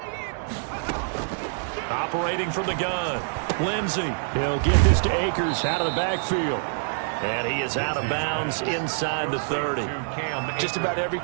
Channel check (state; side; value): silent; left; 55 dB below the other